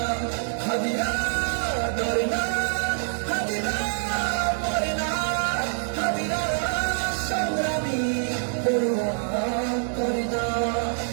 হাদিরা ডরে না, হাদিরা মরে না, হাদিরা সংগ্রামী পরোয়া করে না,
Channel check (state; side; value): silent; left; digital silence